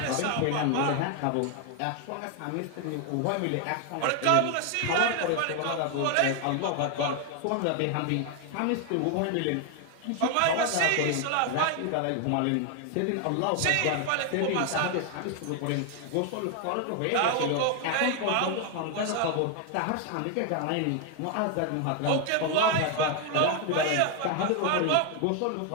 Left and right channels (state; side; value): different; both; correlation 0.01